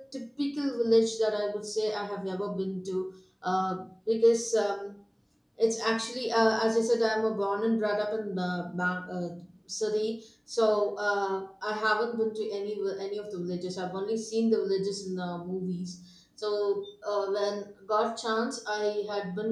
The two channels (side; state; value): both; identical; correlation 1.00